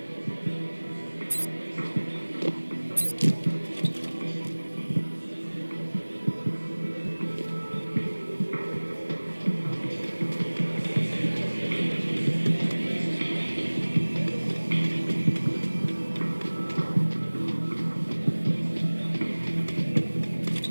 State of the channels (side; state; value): both; inverted; correlation -1.00